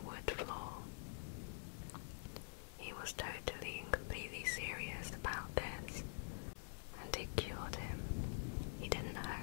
wood floor. He was totally and completely serious about this, and it cured him. He didn't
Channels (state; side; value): silent; right; digital silence